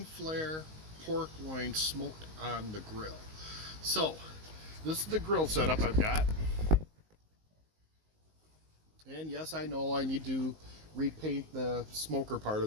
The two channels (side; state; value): left; late; 19 ms